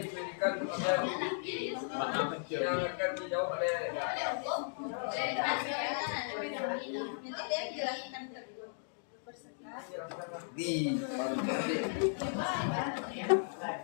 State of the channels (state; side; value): silent; right; digital silence